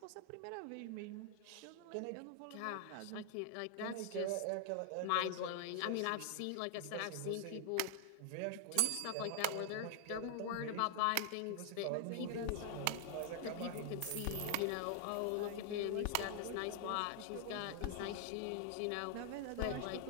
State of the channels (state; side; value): different; both; correlation 0.00